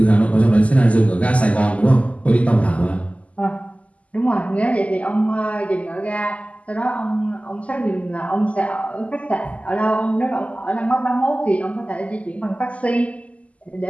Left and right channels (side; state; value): right; late; 0.067 ms